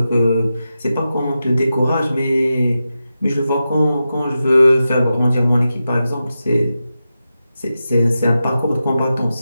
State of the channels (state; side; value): inverted; both; correlation -0.91